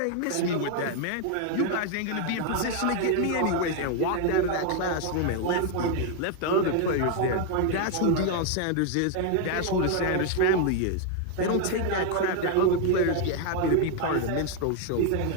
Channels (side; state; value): both; different; correlation 0.01